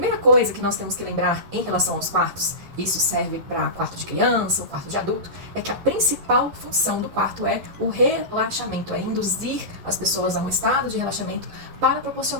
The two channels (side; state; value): left; late; 11 ms